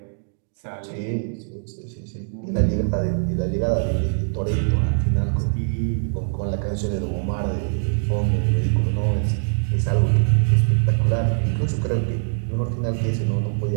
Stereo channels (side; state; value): left; silent; digital silence